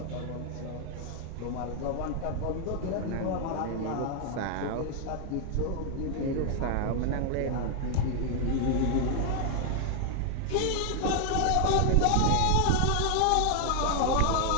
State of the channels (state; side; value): different; both; correlation 0.00